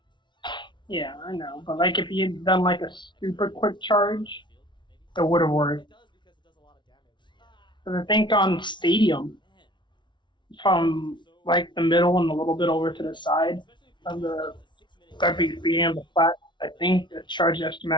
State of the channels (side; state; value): right; late; 0.23 ms